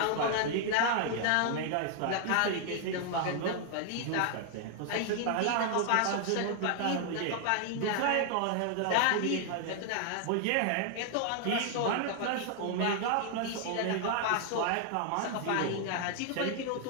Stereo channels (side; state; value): both; different; correlation 0.00